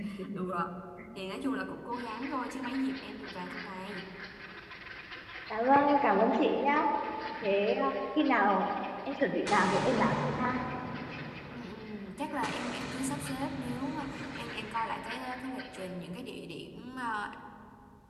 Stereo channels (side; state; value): both; identical; correlation 1.00